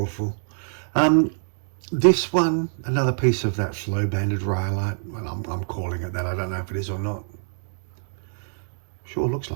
for. This one, another piece of that flow banded rhyolite. Well, I'm calling it that. I don't know if it is or not. Sure looks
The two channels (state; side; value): silent; left; digital silence